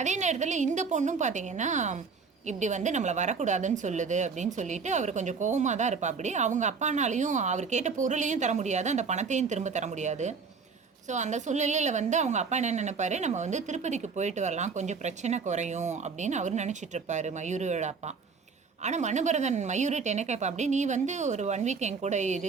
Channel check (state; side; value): quieter; left; 5.2 dB